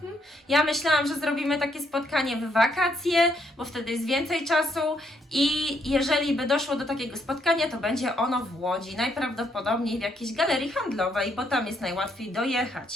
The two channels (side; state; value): both; normal; correlation 0.73